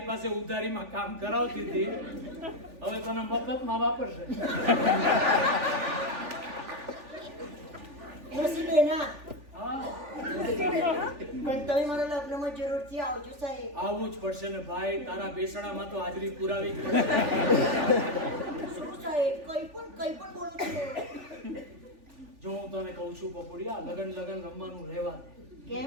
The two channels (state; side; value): late; left; 3.4 ms